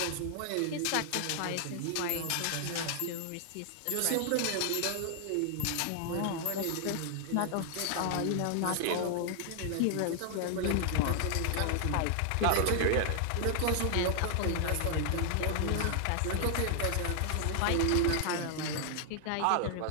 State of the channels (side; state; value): both; different; correlation 0.00